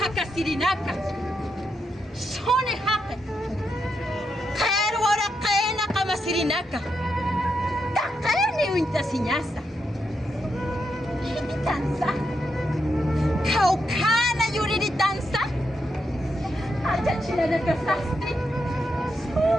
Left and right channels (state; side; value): normal; both; correlation 0.83